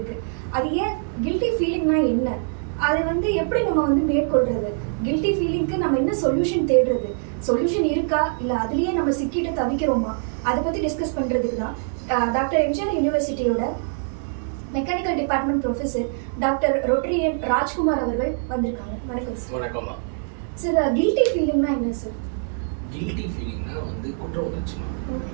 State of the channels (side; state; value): left; silent; digital silence